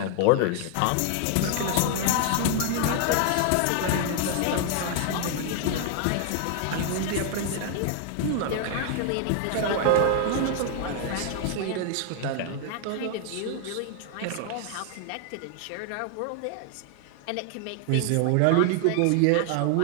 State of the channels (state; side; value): different; both; correlation 0.00